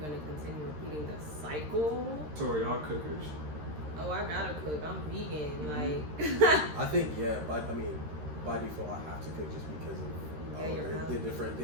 gonna continue repeating the cycle? So are y'all cookers? Oh, I gotta cook. I'm vegan. Like I think by default I have to cook just because of the different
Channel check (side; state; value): left; late; 13 ms